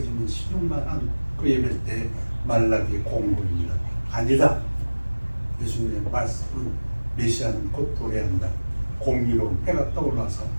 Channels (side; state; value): both; inverted; correlation -1.00